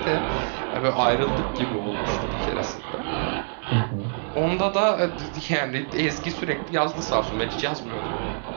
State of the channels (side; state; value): left; silent; 61 dB below the other